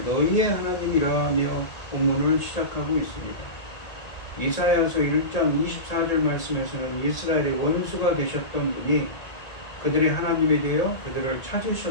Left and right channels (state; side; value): late; right; 1.8 ms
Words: 너희의 하나님이라 하며 본문을 시작하고 있습니다. 이사야서 1장 24절 말씀에서는 이스라엘의 원수가 되셨던 분이 그들의 하나님이 되어 그들을